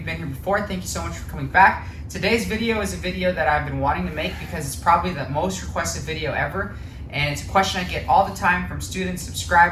been here before, thank you so much for coming back. Today's video is a video that I've been wanting to make because it's probably the most requested video ever. And it's a question I get all the time from students,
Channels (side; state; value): both; identical; correlation 1.00